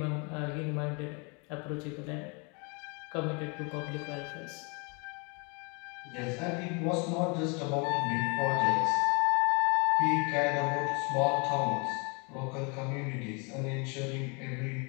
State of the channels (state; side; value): quieter; right; 32.2 dB